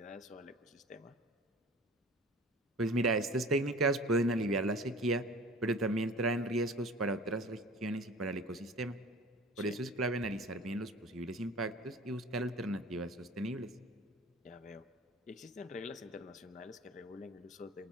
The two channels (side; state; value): both; normal; correlation 0.42